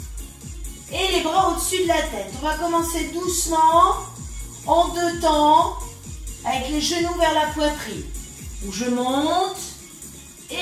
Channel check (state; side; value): identical; both; correlation 1.00